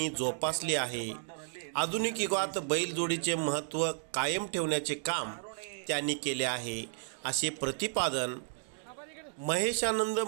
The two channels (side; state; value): left; silent; digital silence